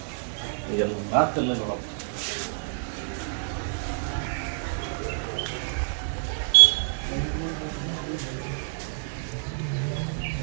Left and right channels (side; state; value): left; silent; 55 dB below the other